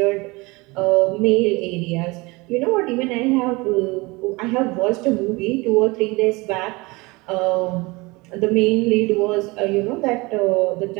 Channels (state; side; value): quieter; left; 24.4 dB